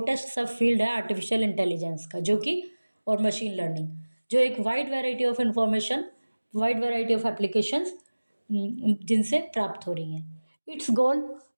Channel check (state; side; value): inverted; both; correlation -1.00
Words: सब field है artificial intelligence का, जो कि, और machine learning, जो एक wide variety of information, wide variety of applications जिनसे प्राप्त हो रही हैं। It's goal